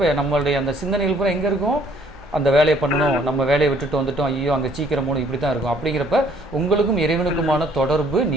நம்மளுடைய அந்த சிந்தனைகள் பூரா எங்கே இருக்கும், அந்த வேலையை பண்ணணும், நம்ம வேலையை விட்டுட்டு வந்துட்டோம், ஐயோ அங்கே சீக்கிரம் போகணும், இப்படி தான் இருக்கும். அப்படிங்கிறப்ப உங்களுக்கும் இறைவனுக்குமான தொடர்பு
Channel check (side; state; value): both; normal; correlation 0.61